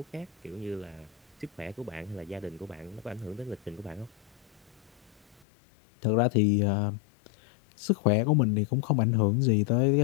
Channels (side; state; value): right; drops out; at 5.5 s